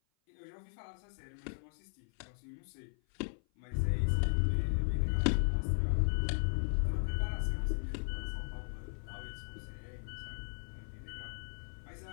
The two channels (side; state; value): right; silent; 53 dB below the other